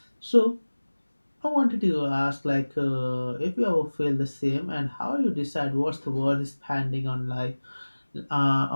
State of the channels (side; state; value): both; inverted; correlation -1.00